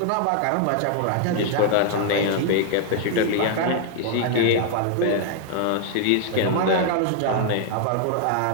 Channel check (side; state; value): both; different; correlation 0.00